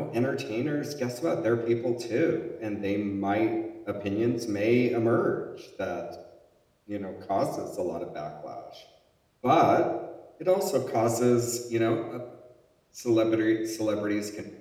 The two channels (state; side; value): identical; both; correlation 1.00